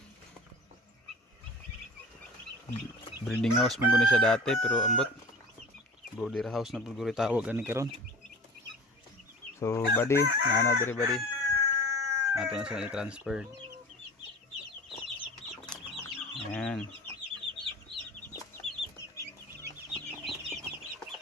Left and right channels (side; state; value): both; normal; correlation 0.39